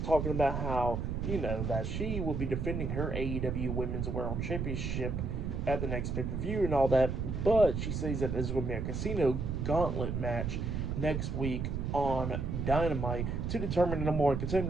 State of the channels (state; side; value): noise; right; rumble, 2 dB below the sound